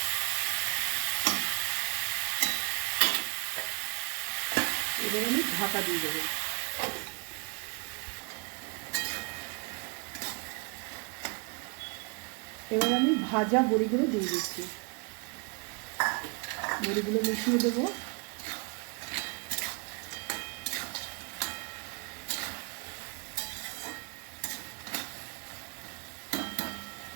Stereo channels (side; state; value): left; quieter; 32.1 dB